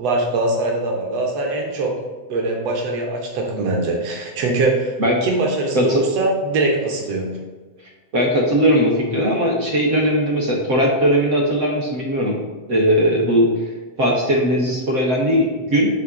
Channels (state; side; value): late; left; 8.1 ms